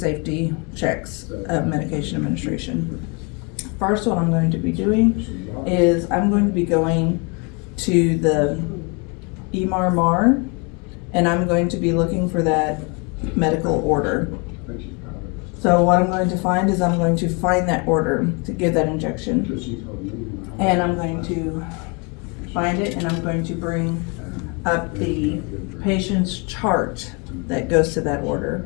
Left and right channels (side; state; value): right; quieter; 32.4 dB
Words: checks of medication administration. First, what I'm going to be doing is I'm going to be going to the EMR, and I'm going to be looking for that medical order. So what I'm going to find is I'm going to find that order to give that injection, and I'm going to find it, and I'm going to bring up the patient's chart that goes to that order,